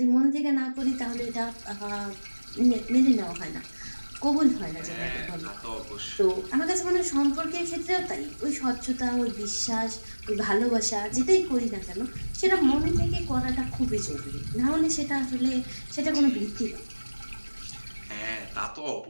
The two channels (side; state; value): both; inverted; correlation -1.00